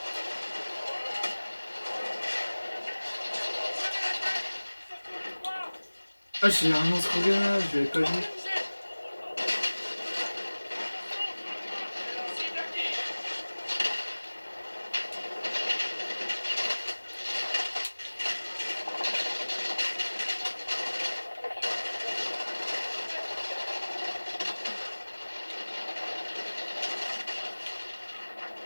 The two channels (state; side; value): inverted; both; correlation -1.00